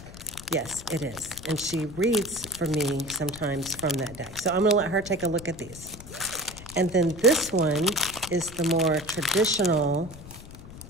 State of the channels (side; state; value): left; noise; rumble, 15 dB below the sound